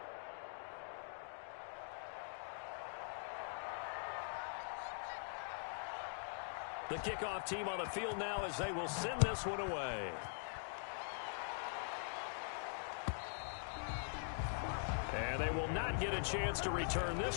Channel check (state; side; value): silent; right; digital silence